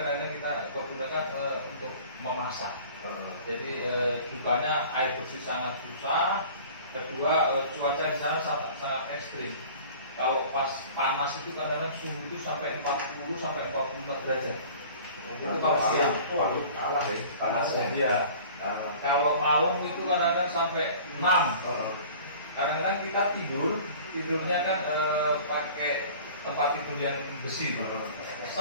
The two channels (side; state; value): both; inverted; correlation -0.45